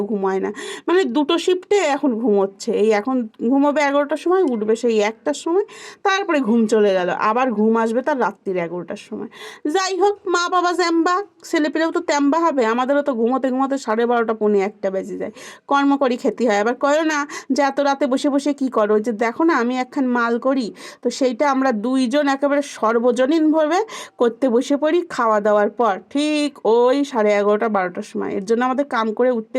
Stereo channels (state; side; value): identical; both; correlation 1.00